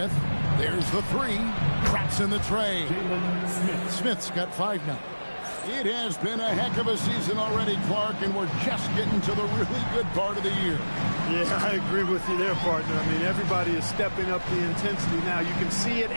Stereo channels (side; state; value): both; inverted; correlation -1.00